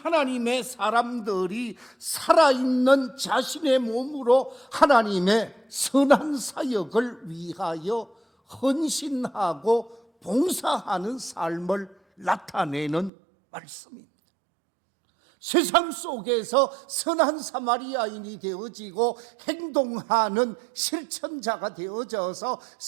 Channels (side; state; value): left; drops out; at 13.1 s